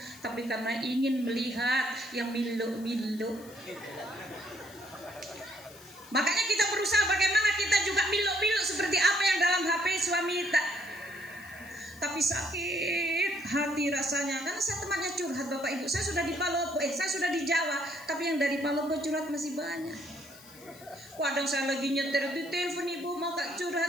tapi karena ingin melihat yang milu-milu. Makanya kita berusaha bagaimana kita juga milu-milu seperti apa yang dalam HP suami tak. Tapi sakit hati rasanya, karena saya temannya curhat Bapak Ibu. Saya sudah di Palopo, saya sudah di Jawa, tapi yang dari Palopo curhat masih banyak. Kadang saya lagi nyetir di telepon Ibu, mau Kak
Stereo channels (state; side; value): noise; left; hiss, 21 dB below the sound